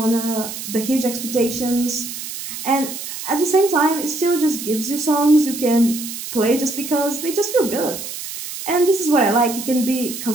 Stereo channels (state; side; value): noise; right; hiss, 8 dB below the sound